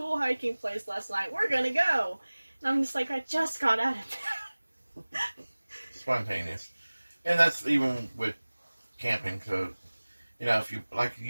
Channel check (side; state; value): both; inverted; correlation -1.00